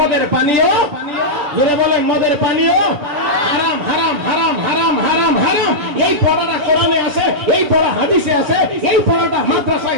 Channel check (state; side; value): late; left; 6.8 ms